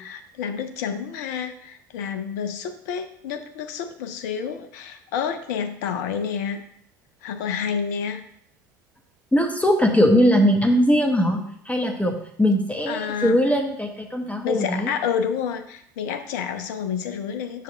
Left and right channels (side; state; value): both; normal; correlation 0.59